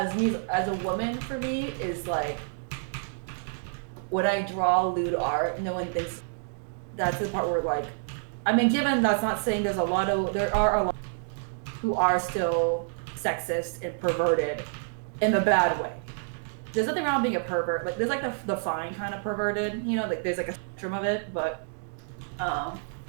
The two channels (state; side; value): silent; left; digital silence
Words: a woman for me is like when I draw lewd art, no one thinks that's the part where like, I mean, given that's not saying there are a lot who are still sexist and perverted in the bad way. There's nothing wrong with being a pervert. Like there's like the fine kind of perverted, you know, like there's like a spectrum of it, but like